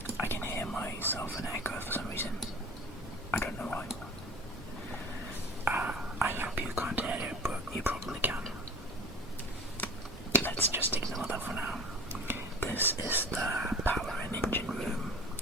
I can hear myself an echo for some reason. I don't know why. I hope you can't hear it, but you probably can. Let's just ignore that for now. This is the power and engine room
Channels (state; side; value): normal; both; correlation 0.40